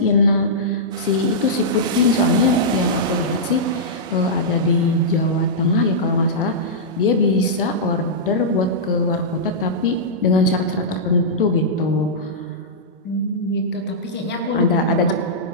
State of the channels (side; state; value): both; normal; correlation -0.13